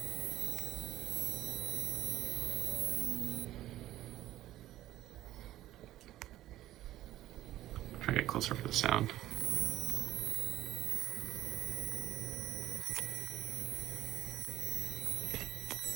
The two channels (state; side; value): quieter; left; 14.4 dB